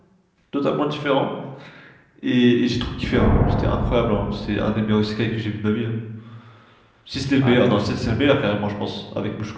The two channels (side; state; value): both; identical; correlation 1.00